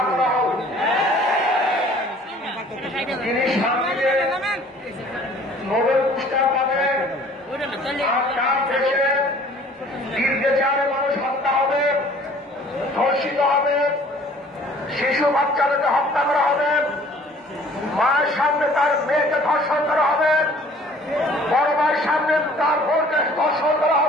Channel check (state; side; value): normal; both; correlation 0.52